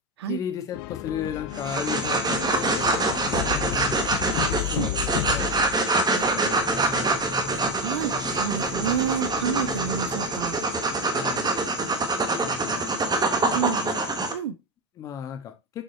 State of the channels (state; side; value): normal; both; correlation 0.13